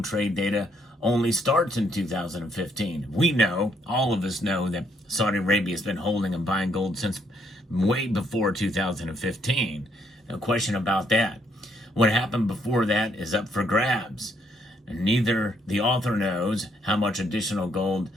trade data only starts in 2015. We know, all of us know, that Saudi Arabia has been holding and buying gold since way before 2015. No question about that. What happened before that is up for grabs. And neither the author knows how much additional gold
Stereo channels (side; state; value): both; normal; correlation 0.71